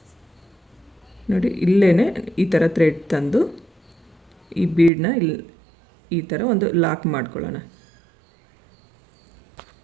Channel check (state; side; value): drops out; left; at 4.9 s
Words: ನೋಡಿ, ಇಲ್ಲೇ ಈ ಥರ ಥ್ರೆಡ್ ತಂದು ಈ ಬೀಡನ್ನ ಇಲ್ಲಿ ಈ ಥರ ಒಂದು ಲಾಕ್ ಮಾಡ್ಕೊಳ್ಳೋಣ.